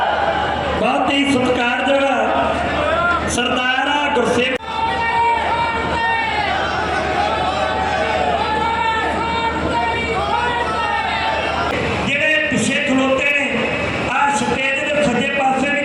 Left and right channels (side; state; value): both; identical; correlation 1.00